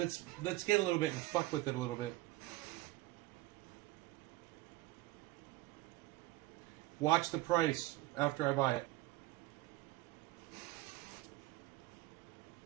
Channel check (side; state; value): left; quieter; 18.0 dB